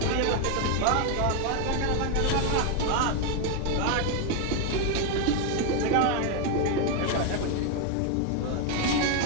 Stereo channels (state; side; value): different; both; correlation 0.01